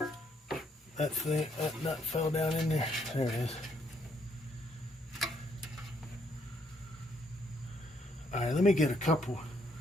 That nut fell down in there. There it is. All right, let me get a couple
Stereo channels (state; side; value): normal; both; correlation 0.71